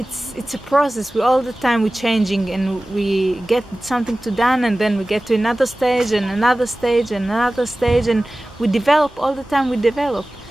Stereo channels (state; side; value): normal; both; correlation 0.97